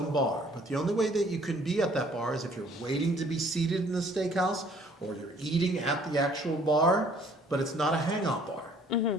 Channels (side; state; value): both; normal; correlation 0.58